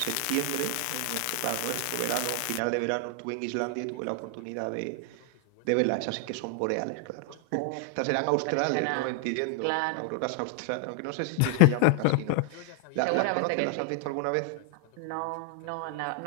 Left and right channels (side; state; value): both; different; correlation 0.00